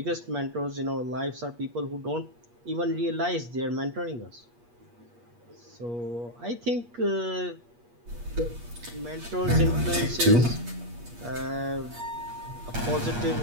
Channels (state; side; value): late; left; 8.4 ms